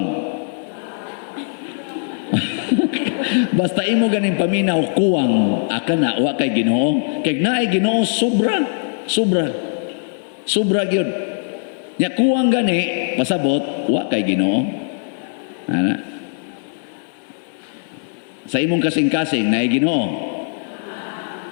Basta imo ganing paminaw kuwang, aka na wa kay Ginoo. Kay naay Ginoo sobra, sobra. Sobra gyud. Nya kuwang gani pasabot wa kay Ginoo. Ana. Sa imong kasing-kasing naay Ginoo.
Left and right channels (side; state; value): right; silent; digital silence